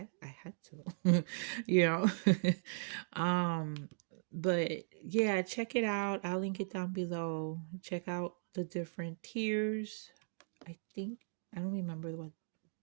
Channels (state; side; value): silent; left; digital silence